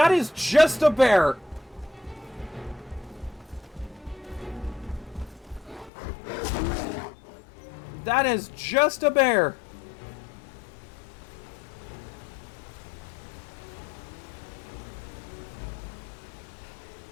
is just a bear! That is just a bear!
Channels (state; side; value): drops out; right; at 5.9 s